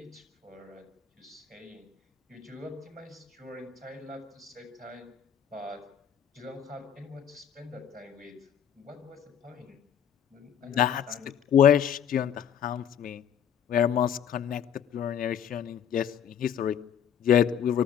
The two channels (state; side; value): quieter; right; 8.8 dB